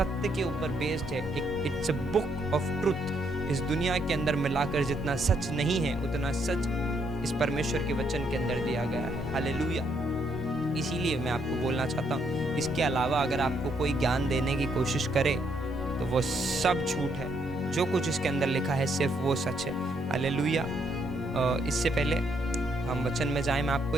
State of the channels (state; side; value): normal; both; correlation 0.73